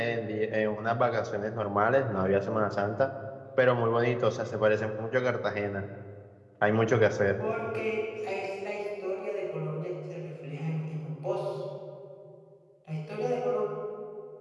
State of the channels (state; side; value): identical; both; correlation 1.00